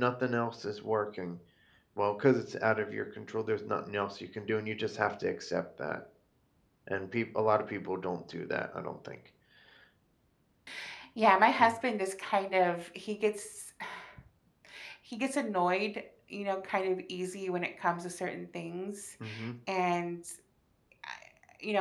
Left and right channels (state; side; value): identical; both; correlation 1.00